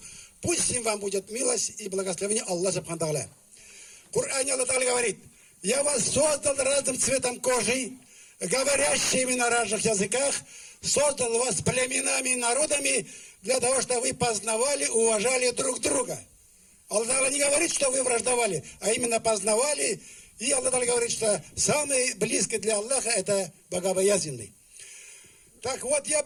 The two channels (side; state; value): both; identical; correlation 1.00